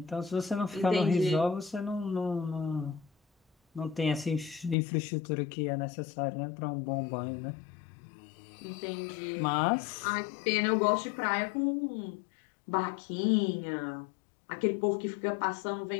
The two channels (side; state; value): right; drops out; at 4.8 s